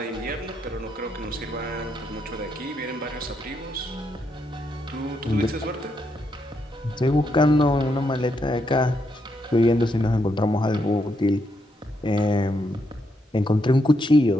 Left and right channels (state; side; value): normal; both; correlation 0.79